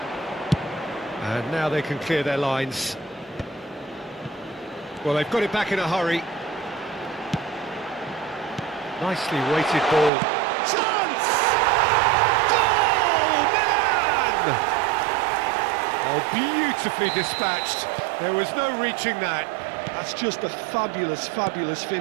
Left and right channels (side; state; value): left; drops out; at 10.1 s